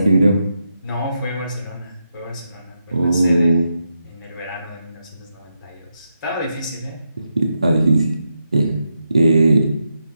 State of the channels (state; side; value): inverted; both; correlation -0.85